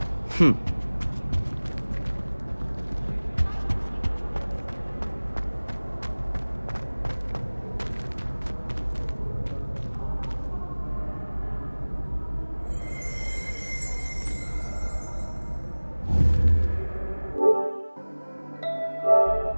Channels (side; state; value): both; inverted; correlation -1.00